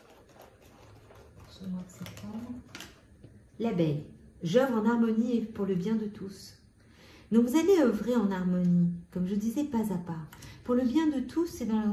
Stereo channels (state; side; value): identical; both; correlation 1.00